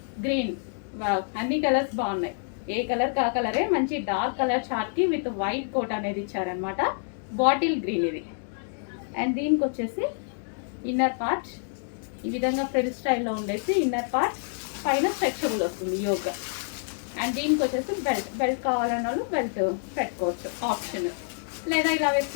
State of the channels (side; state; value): right; silent; digital silence